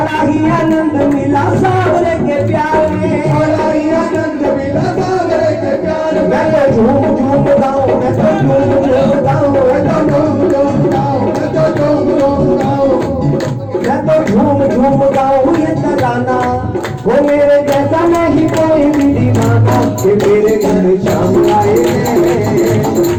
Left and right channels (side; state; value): right; noise; hum, 27 dB below the sound